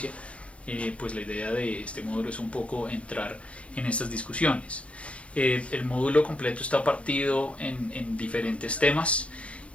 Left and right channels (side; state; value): right; late; 0.062 ms